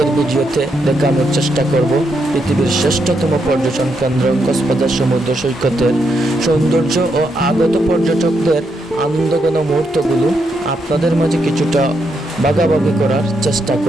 ভিডিওতে দেখানোর চেষ্টা করব পৃথিবীর শ্রেষ্ঠতম পর্যটন কেন্দ্র কক্সবাজার সমুদ্র সৈকতের সৌন্দর্য ও আগত পর্যটকদের আনন্দঘন মুহূর্তগুলো আপনাদের মাঝে কিছুটা ভাগাভাগি করার চেষ্টা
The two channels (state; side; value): normal; both; correlation 0.80